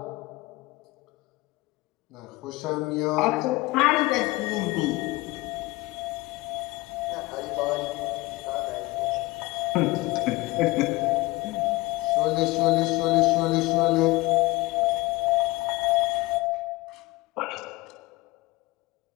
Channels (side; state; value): right; quieter; 20.9 dB